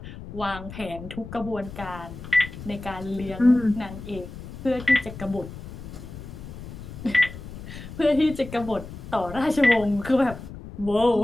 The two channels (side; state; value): left; noise; rumble, 12 dB below the sound